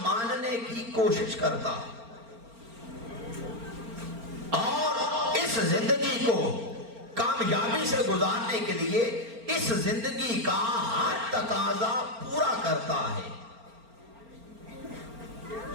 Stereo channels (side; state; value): left; late; 4.4 ms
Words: ماننے کی کوشش کرتا ہے، اور اس زندگی کو کامیابی سے گزارنے کے لیے اس زندگی کا ہر تقاضا پورا کرتا ہے۔